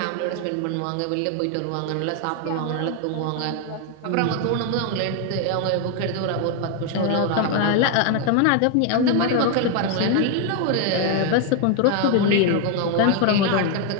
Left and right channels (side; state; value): both; different; correlation 0.01